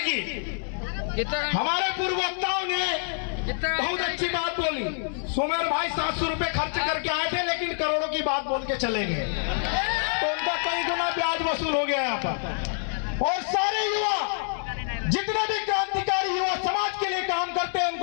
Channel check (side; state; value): right; silent; digital silence